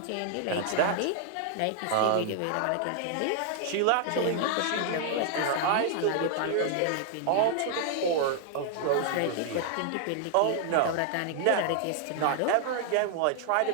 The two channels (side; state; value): both; different; correlation 0.00